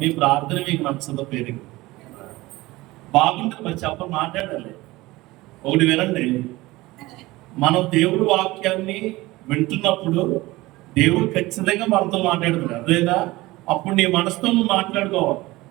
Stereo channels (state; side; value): quieter; left; 19.7 dB